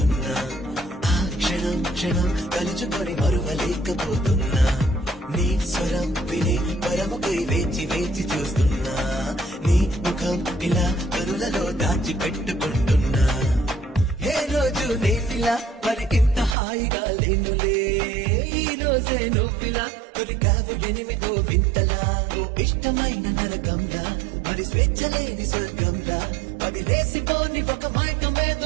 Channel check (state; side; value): drops out; left; at 16.6 s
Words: ఆ క్షణం క్షణం కలుచుకొని మరువలేకపోతున్నా నీ స్వరం విని పరముకై వేచి వేచి చూస్తున్నా నీ ముఖం ఇలా కరులలో దాచి పెట్టుకుంటున్నా ఏ రోజు నేనిలా మరి ఇంత హాయిగా లేనులే ఈ రోజే నువ్విలా దొరికావు ఎనిమిదో వింతలా ఇష్టమైన నరకంలా మరి స్వేచ్ఛ లేని స్వర్గంలా అది లేసిపోని ఒక